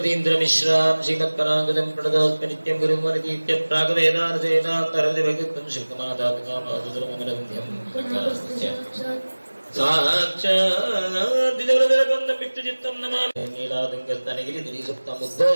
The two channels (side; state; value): both; inverted; correlation -1.00